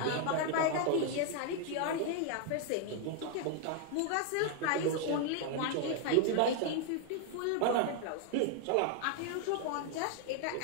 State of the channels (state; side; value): different; both; correlation 0.00